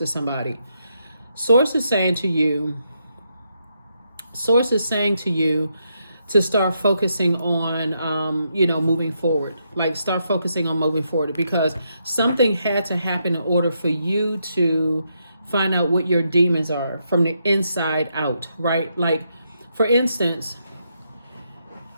somebody. Source is saying to you to start focusing on, moving forward. Like start focusing on moving forward, because something had to happen in order for you to find out what your demons are from the inside out, right? Like, for instance,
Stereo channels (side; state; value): both; inverted; correlation -0.79